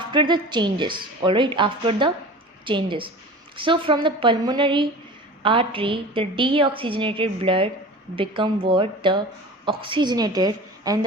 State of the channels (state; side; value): normal; both; correlation 0.37